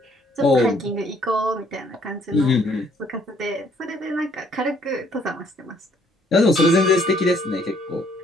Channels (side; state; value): both; normal; correlation 0.64